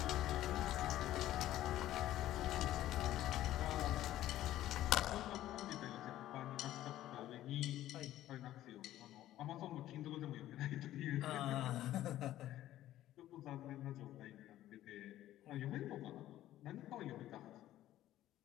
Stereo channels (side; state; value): right; quieter; 13.7 dB